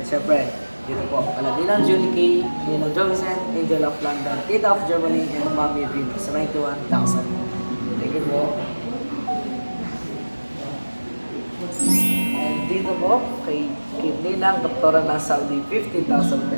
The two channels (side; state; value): both; inverted; correlation -1.00